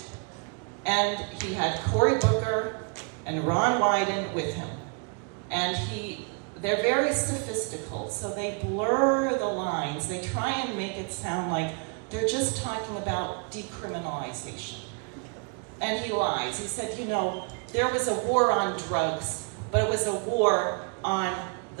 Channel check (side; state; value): left; quieter; 37.4 dB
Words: And he had Cory Booker and Ron Wyden with him. And they're very sophistical, so they blur the lines. They try and make it sound like they're just talking about decriminalization. And he lies. He said, there was a war on drugs, but it was a war on